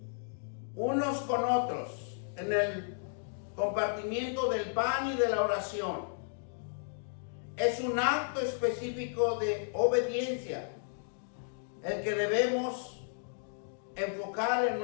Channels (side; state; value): right; silent; digital silence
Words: unos con otros, en el compartimiento del pan y de la oración. Es un acto específico de obediencia el que debemos enfocar en